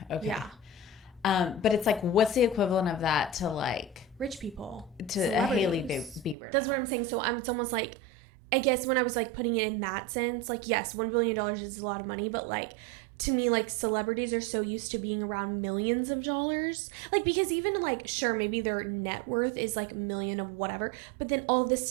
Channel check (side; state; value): left; drops out; at 6.4 s